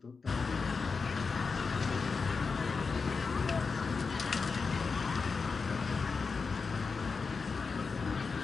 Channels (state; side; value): quieter; right; 4.8 dB